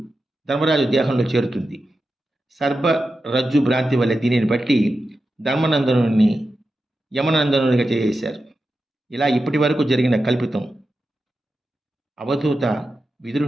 ధర్మరాజు దేహంలో చేరుతుంది. సర్పరజ్జు భ్రాంతి వలె దీనిని బట్టి ధర్మనందనుని యమనందనునిగా చేశారు. ఇలా ఇప్పటి వరకు జరిగిన కల్పితం. అవధూత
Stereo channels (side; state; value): both; normal; correlation 0.91